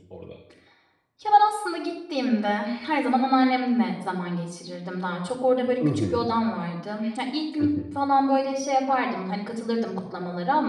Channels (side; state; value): both; identical; correlation 1.00